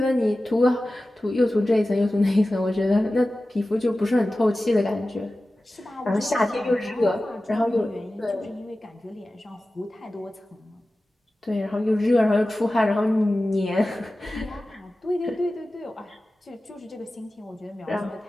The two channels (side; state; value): both; normal; correlation 0.95